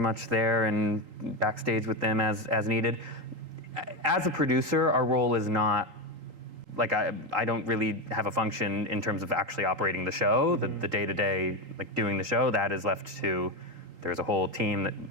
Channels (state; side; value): late; left; 3.8 ms